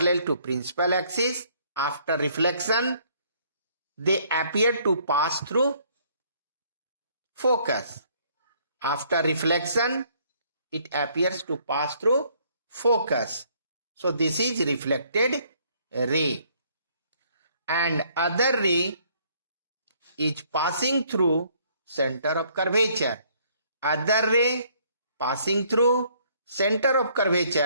to principal axis. After reflection, they appear to pass through focus. After reflection, it appears to pass through focus. So this is reflected ray. And other ray is passing through center of curvature. Other ray passing through center of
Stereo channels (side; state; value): both; inverted; correlation -0.64